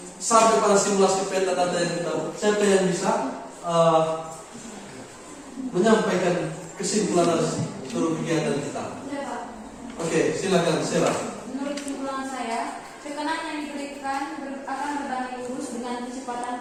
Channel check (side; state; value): both; identical; correlation 1.00